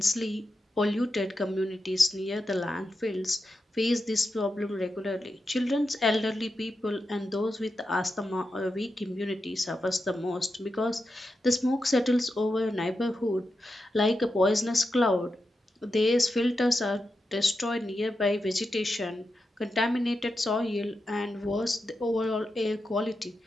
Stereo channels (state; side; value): normal; both; correlation 0.88